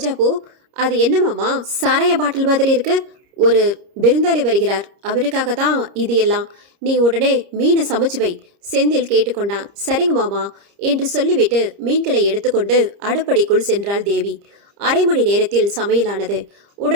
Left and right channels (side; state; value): left; late; 30 ms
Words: பூ. அது என்னமாம்மா சாராய பாட்டில் மாதிரி இருக்கு? ஒரு விருந்தாளி வருகிறார், அவருக்காக தான் இது எல்லாம். நீ உடனே மீனை சமைச்சு வை. செந்தில் கேட்டுக்கொண்டான். சரிங்க மாமா என்று சொல்லிவிட்டு மீன்களை எடுத்துக்கொண்டு அடுப்படிக்குள் சென்றாள் தேவி. அரை மணி நேரத்தில் சமையலானது.